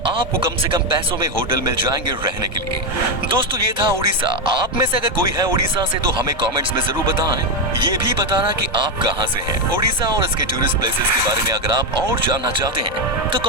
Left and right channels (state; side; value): normal; both; correlation 0.08